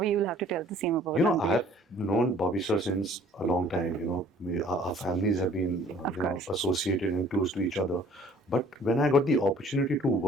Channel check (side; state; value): both; normal; correlation 0.53